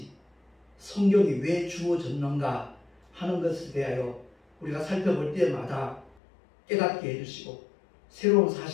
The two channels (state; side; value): drops out; right; at 6.2 s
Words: 성경이 왜 주어졌는가 하는 것에 대하여 우리가 살펴볼 때마다 깨닫게 해주시고 새로운